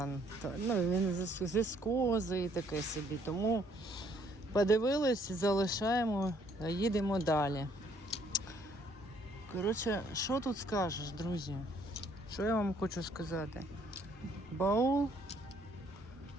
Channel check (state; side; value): normal; both; correlation 0.65